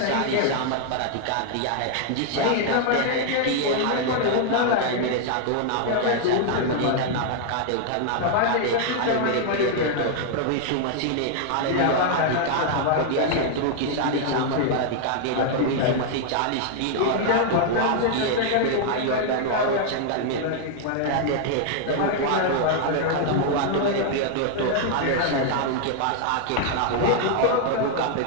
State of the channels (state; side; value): different; both; correlation 0.00